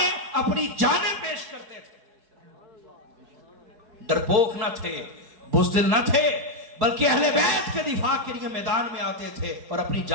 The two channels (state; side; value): late; left; 4.6 ms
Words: اپنی جانیں پیش کرتے تھے، ڈرپوک نہ تھے، بزدل نہ تھے، بلکہ اہل بیت کے دفاع کے لیے میدان میں آتے تھے اور اپنی